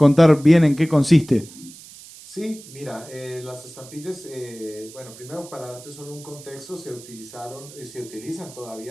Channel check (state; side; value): noise; right; hiss, 18 dB below the sound